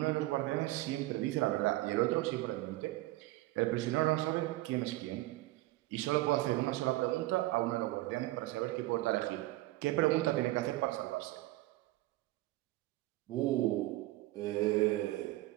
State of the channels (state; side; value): quieter; left; 18.4 dB